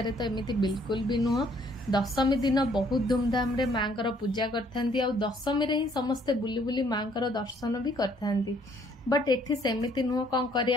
तो एमिति बिल्कुल भी नुह। दशमी दिन बहुत धूमधाम रे माँकर पूजा करथांती। आ दशमी रे ही समस्ते बुली बुली माँकर दर्शन भी करथांती। बट एठी सेमिति नुह। कौन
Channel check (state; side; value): normal; both; correlation 0.64